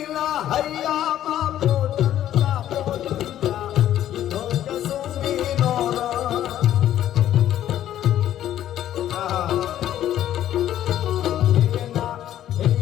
હૈયામાં પોટલા પોટલા ઈધો કસુમીનો રંગ.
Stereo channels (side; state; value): right; quieter; 11.8 dB